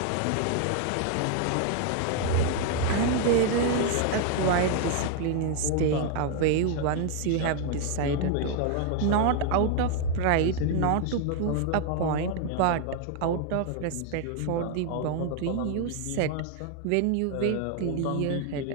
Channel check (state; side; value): different; both; correlation 0.00